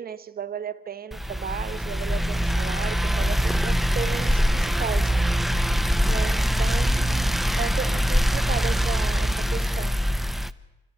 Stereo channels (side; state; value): both; normal; correlation 0.91